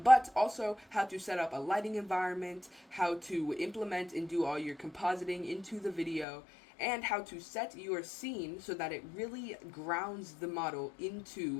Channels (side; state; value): right; drops out; at 6.2 s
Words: also how to set up a lighting environment, how to implement and do all your compositing into the video, and how to set your scene so that it really grounds the model